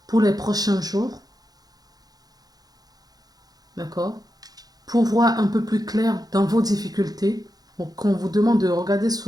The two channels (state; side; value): late; left; 0.19 ms